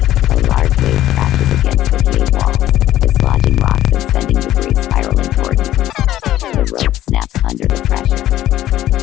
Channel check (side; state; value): right; quieter; 13.3 dB